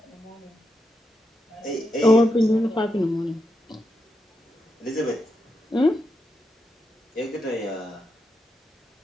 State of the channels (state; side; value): normal; both; correlation 0.84